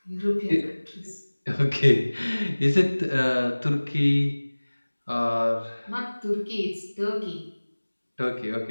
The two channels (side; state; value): both; inverted; correlation -1.00